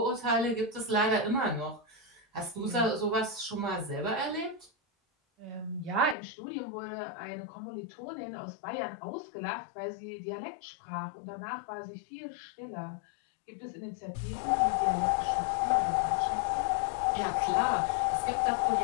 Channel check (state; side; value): drops out; right; at 6.2 s